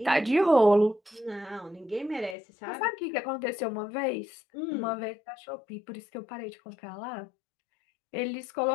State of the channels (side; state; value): right; drops out; at 2.4 s